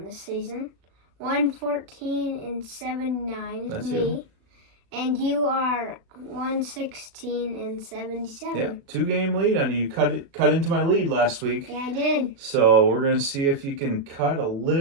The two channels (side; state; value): left; late; 36 ms